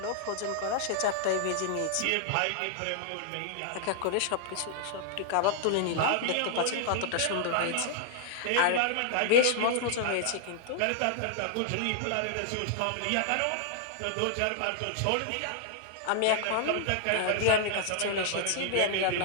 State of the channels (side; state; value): both; different; correlation -0.01